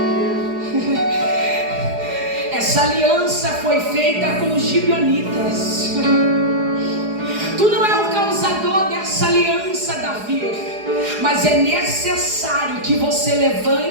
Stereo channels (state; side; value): late; left; 4.8 ms